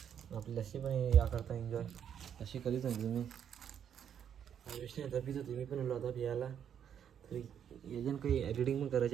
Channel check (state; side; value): quieter; left; 8.8 dB